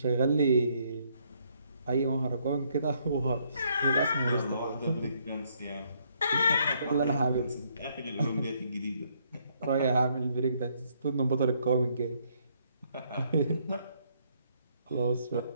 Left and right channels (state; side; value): inverted; both; correlation -0.70